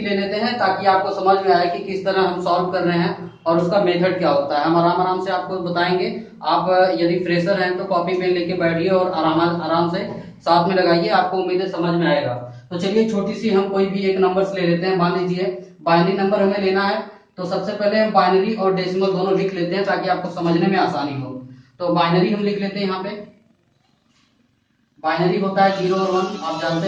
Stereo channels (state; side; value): identical; both; correlation 1.00